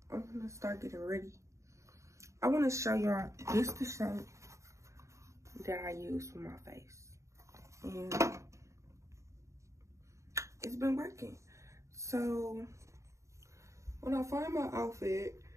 I'm gonna start getting ready. I want to show y'all this the shirt that I use for my face. And it's been working. So when I find my outfit,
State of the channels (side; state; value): left; late; 0.14 ms